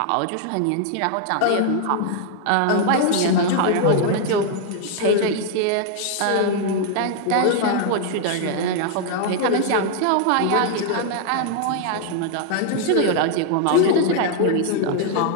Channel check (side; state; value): both; different; correlation 0.00